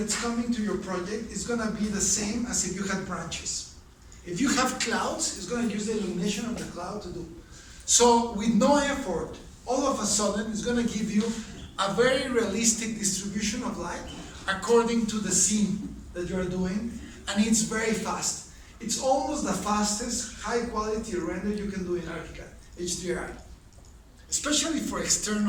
coming to your project is going to be the same as if you had branches. If you have clouds, it's going to use the illumination of the cloud to do. So with no effort, all of a sudden, it's going to give you a very realistic distribution of light according to the scene that you're doing, and it's very fast. It's almost the fastest high quality render you can do in ArchiCAD, HDRI. Especially for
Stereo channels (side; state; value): both; identical; correlation 1.00